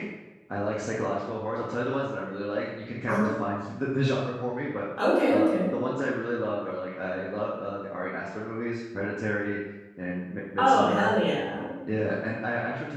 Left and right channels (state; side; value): identical; both; correlation 1.00